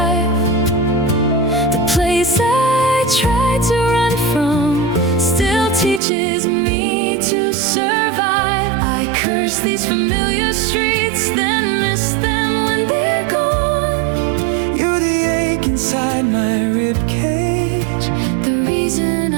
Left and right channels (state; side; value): drops out; left; at 6.0 s